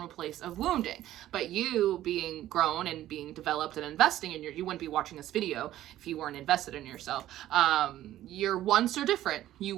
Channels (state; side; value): quieter; left; 13.5 dB